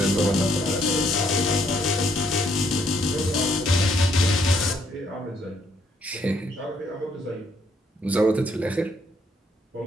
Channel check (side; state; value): both; normal; correlation 0.70